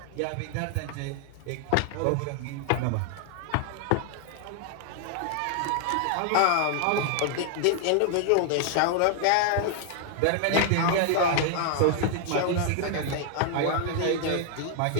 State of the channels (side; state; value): both; different; correlation 0.00